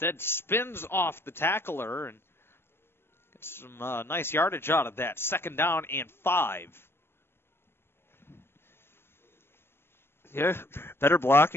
spins off the tackler and gets some nice yardage out of that. 2nd down and 5. Yeah, better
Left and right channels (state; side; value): late; right; 0.11 ms